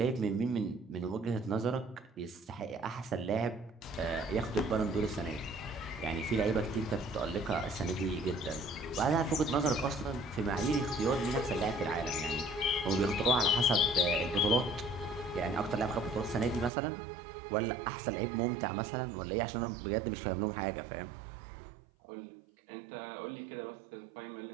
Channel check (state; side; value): drops out; left; at 16.7 s